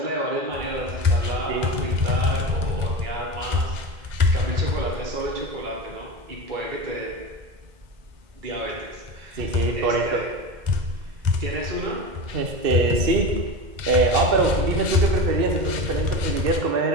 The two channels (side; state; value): left; late; 2.1 ms